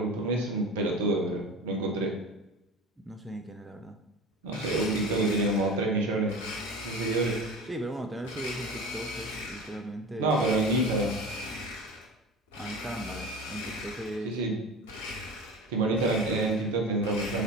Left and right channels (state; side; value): normal; both; correlation 0.32